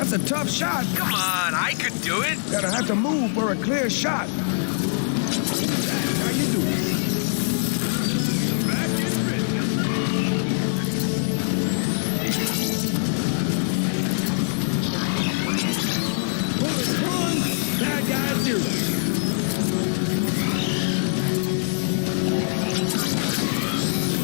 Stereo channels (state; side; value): silent; right; digital silence